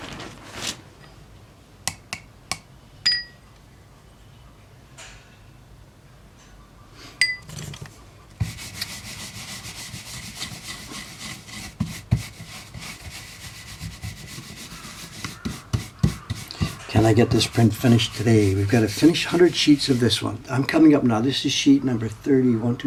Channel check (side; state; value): both; identical; correlation 1.00